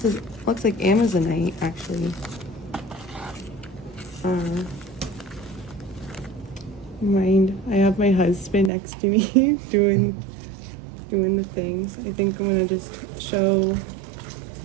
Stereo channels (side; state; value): left; drops out; at 8.7 s